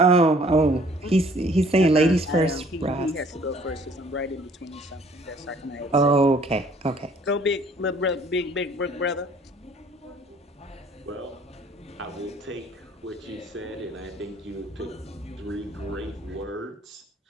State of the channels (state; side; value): normal; both; correlation 0.57